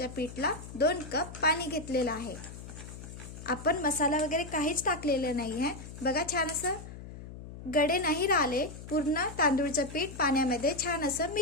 पीठला 2 कप पाणी घेतलेलं आहे. आपण मसाला वगैरे काहीच टाकलेलं नाही आहे. बघा छान असं गडे नाही राहिले. पूर्ण तांदूळचं पीठ पाण्यामध्ये छान असं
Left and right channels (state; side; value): noise; left; hum, 13 dB below the sound